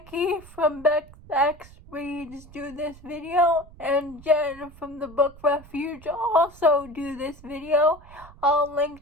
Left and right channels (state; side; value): noise; right; rumble, 21 dB below the sound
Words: from Bex Reads do this video, and Jen from the Book Refuge also do this video. I'll